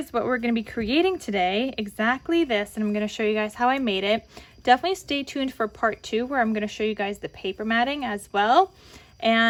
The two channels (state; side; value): identical; both; correlation 1.00